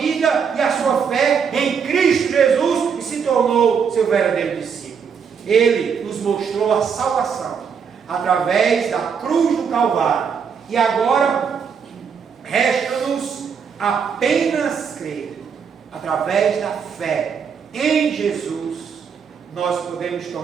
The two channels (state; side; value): quieter; left; 6.6 dB